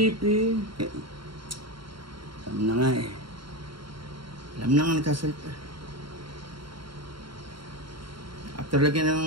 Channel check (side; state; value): left; late; 0.73 ms